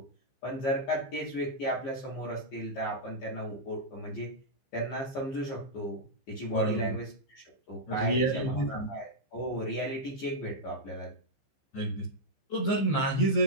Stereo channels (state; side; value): late; right; 15 ms